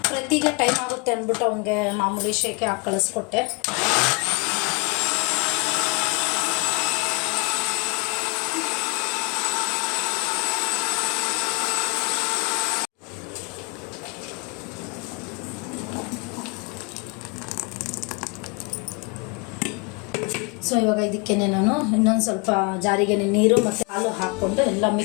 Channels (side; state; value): right; quieter; 30.6 dB